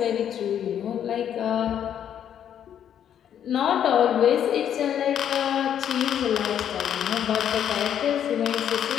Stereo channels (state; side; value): quieter; right; 9.5 dB